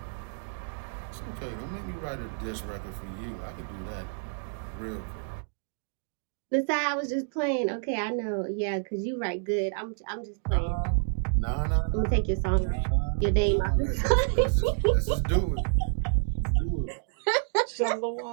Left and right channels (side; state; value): left; silent; digital silence